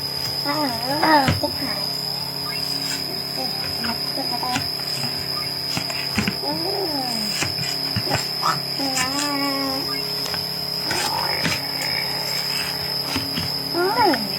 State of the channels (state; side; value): identical; both; correlation 1.00